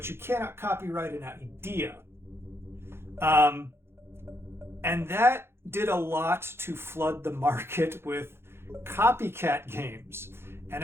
you cannot copyright an idea. And that did a lot to flood the market with copycat games. And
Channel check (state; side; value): late; left; 0.12 ms